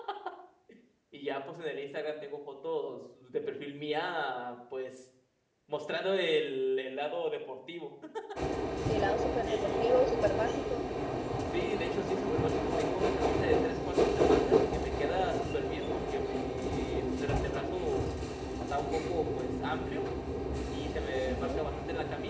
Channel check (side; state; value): both; identical; correlation 1.00